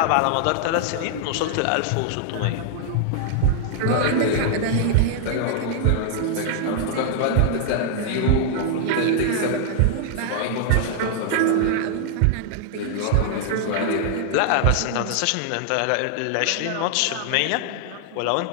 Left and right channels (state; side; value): different; both; correlation -0.01